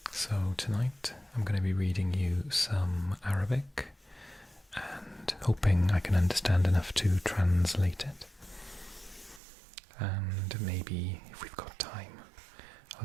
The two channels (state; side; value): drops out; left; at 9.4 s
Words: So tonight I'm going to be reading you some Arabic and hoping I can understand enough to translate it. And maybe, if we've got time,